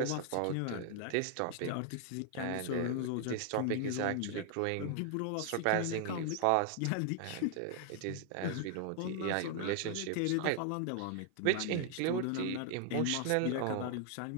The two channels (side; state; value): both; different; correlation 0.00